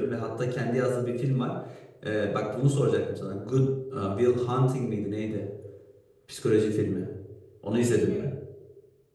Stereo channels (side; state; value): both; identical; correlation 1.00